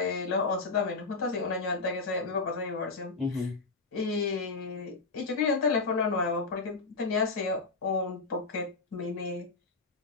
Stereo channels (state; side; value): quieter; right; 4.0 dB